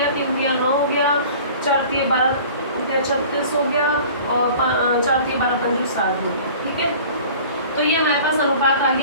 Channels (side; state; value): both; inverted; correlation -0.45